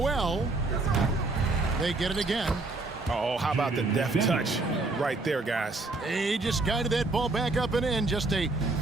They get it again. Oh, how about the deft touch right there, guys? He just guided that ball back up and in. Just a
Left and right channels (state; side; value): quieter; left; 3.3 dB